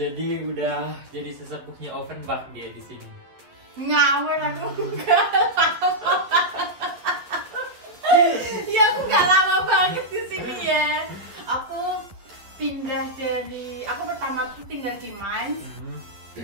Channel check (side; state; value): left; late; 11 ms